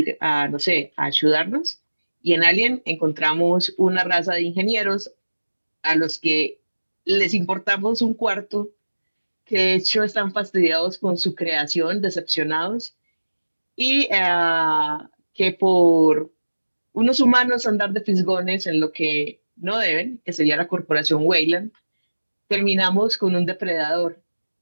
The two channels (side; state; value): both; inverted; correlation -1.00